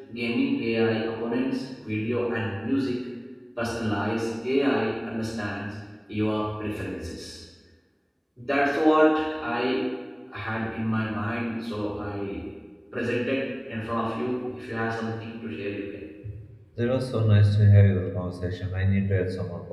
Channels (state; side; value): identical; both; correlation 1.00